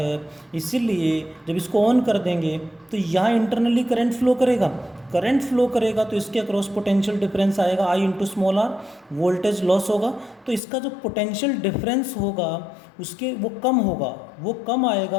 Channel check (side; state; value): right; drops out; at 10.6 s